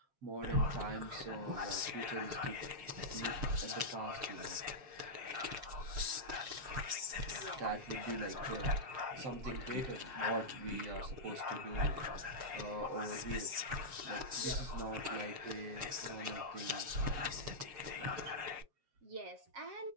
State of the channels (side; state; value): left; late; 7.4 ms